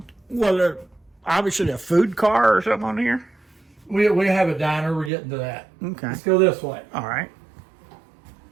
Well, obviously a food car or something on here? We have a diner. We're getting to that. Okay. Let's go this way. All right.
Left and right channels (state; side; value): drops out; left; at 5.1 s